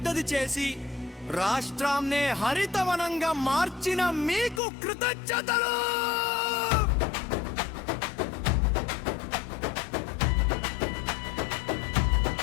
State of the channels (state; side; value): drops out; right; at 4.6 s